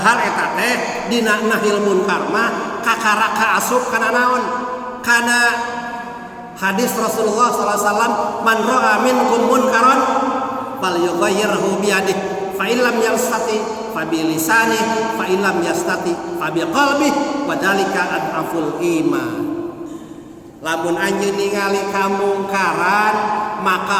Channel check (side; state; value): both; identical; correlation 1.00